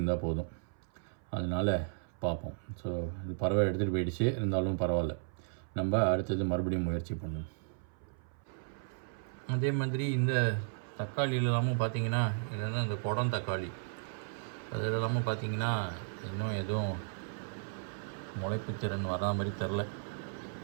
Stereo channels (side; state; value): left; silent; 55 dB below the other